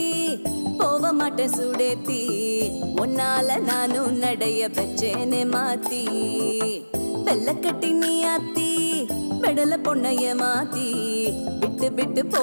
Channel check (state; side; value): inverted; both; correlation -1.00